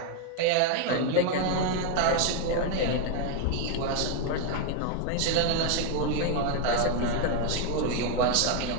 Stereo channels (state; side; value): different; both; correlation 0.01